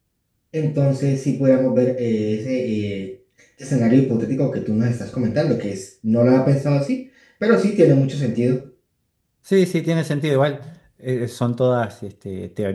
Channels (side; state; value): both; identical; correlation 1.00